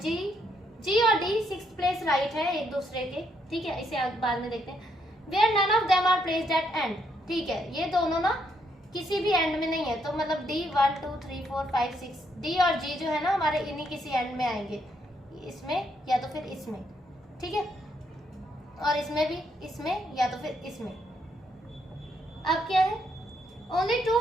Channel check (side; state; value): both; normal; correlation 0.75